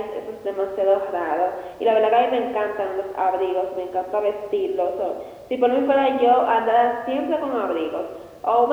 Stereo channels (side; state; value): both; identical; correlation 1.00